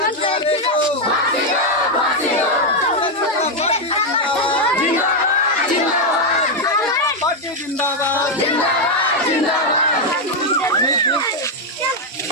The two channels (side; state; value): both; normal; correlation 0.02